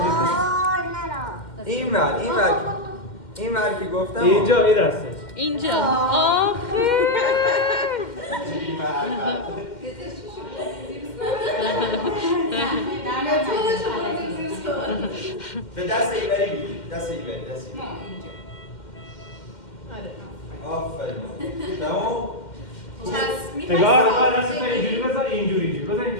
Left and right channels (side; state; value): right; late; 2.1 ms